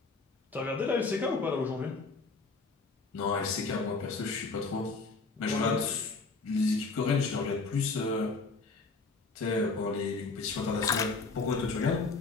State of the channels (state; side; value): quieter; right; 4.0 dB